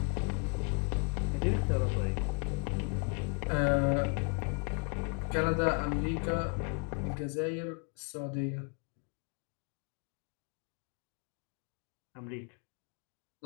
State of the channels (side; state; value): right; quieter; 36.4 dB